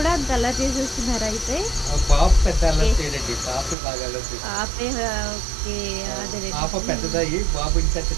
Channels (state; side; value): drops out; left; at 3.8 s